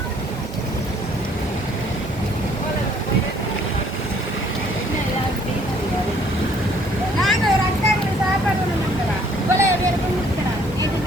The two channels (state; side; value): normal; both; correlation 0.61